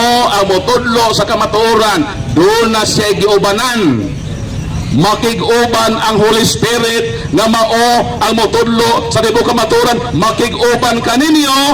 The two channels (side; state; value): both; identical; correlation 1.00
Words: ang motudlo sa kamatuoran. Doon na siya giubanan. Makig-uban ang Holy Spirit nga mao ang motudlo sa tibuok kamatuoran. Makig-uban kaninyo